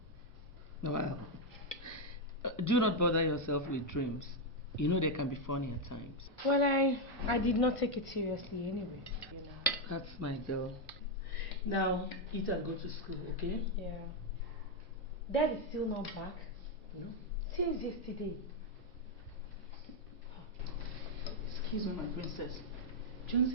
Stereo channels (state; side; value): normal; both; correlation 0.02